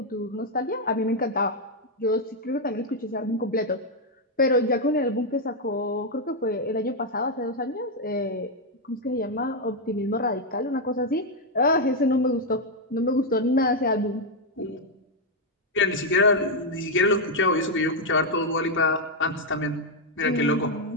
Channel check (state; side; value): normal; both; correlation 0.01